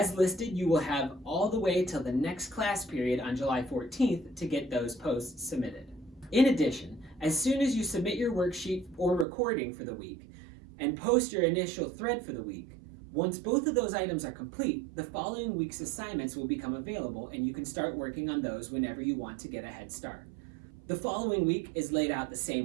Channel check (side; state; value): left; drops out; at 9.2 s